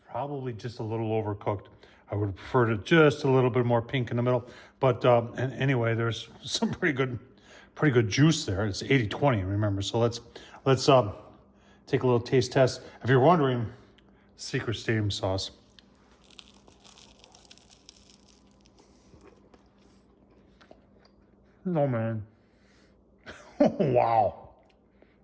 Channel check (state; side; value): identical; both; correlation 1.00